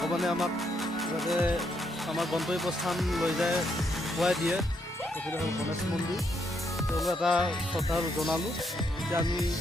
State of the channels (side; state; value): both; normal; correlation 0.76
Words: भगवाने आमाक जाते आमार गंतव्यस्थान लै जाए खुवाई दिए। एफाले हल गणेश मन्दिर এটা শ্ৰদ্ধা জনালোঁ। এতিয়া আমি